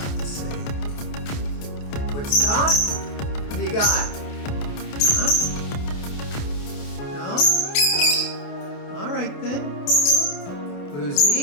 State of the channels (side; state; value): right; late; 28 ms